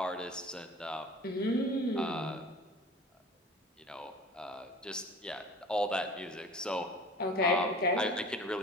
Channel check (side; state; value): both; normal; correlation 0.42